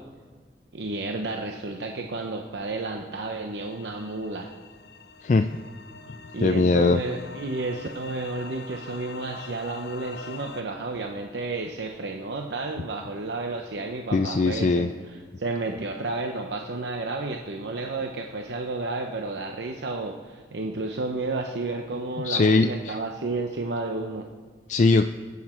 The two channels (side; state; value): both; normal; correlation 0.40